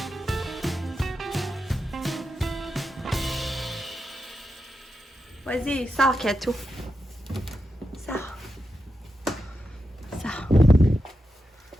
pareil. Vas-y, sors, Katou. Sors. Sors.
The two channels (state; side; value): normal; both; correlation 0.88